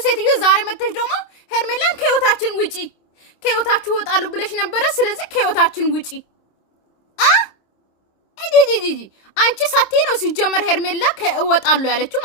ሴትዮ ዛሬ መተሽ ደግሞ ሄርሜላን ከህይወታችን ውጪ ከህይወታችሁ ወጣሉ ብለሽ ነበረ። ስለዚህ ከህይወታችን ውጪ ጂጂጂ አንቺ ሳቴ ነው ሲጀመር ሄርሜላ ከወጣሉ ያለችው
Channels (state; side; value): late; right; 26 ms